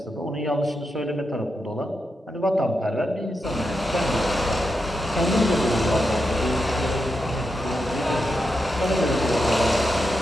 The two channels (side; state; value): both; normal; correlation 0.86